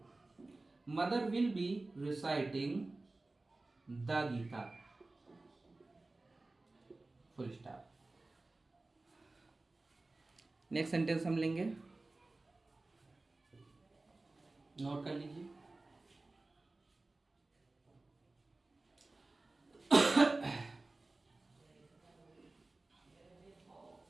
Mother will be reciting the Gita, full stop. Next sentence हम लेंगे, नोट कर लीजिए।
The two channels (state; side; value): quieter; left; 3.1 dB